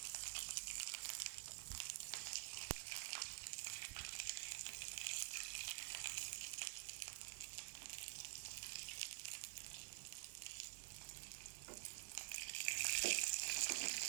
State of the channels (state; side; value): silent; left; digital silence